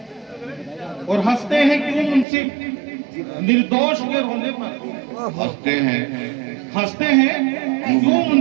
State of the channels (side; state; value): left; drops out; at 2.2 s